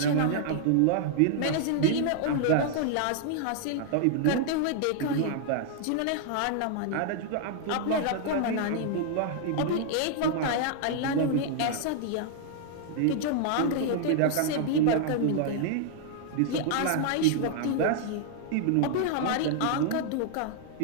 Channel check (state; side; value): different; both; correlation 0.00